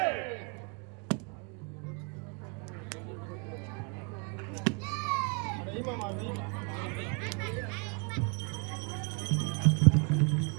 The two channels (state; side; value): quieter; left; 35.9 dB